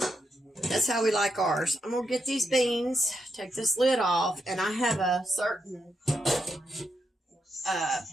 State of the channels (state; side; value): normal; both; correlation 0.83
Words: That's how we like ours. I'm going to get these beans, take this lid off, and I have a certain